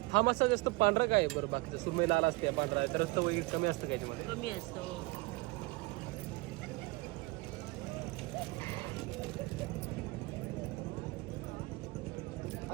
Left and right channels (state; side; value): quieter; left; 23.9 dB